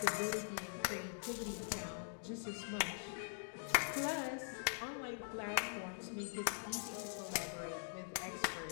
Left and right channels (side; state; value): right; silent; digital silence